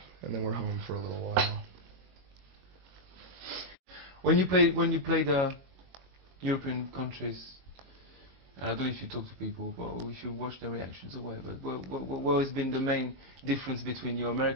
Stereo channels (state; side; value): late; left; 22 ms